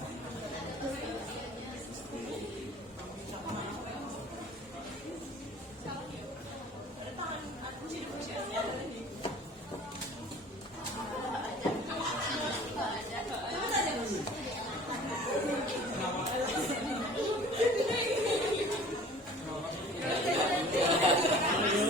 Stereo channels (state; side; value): normal; both; correlation 0.47